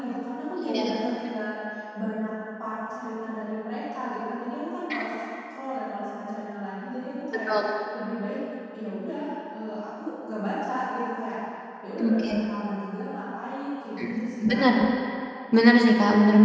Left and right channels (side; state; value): both; identical; correlation 1.00